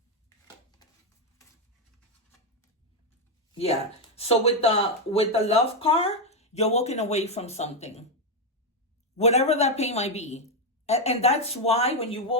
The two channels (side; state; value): both; normal; correlation 0.04